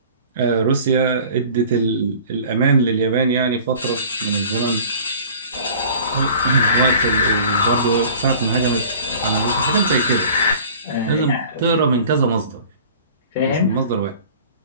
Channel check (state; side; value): inverted; both; correlation -0.45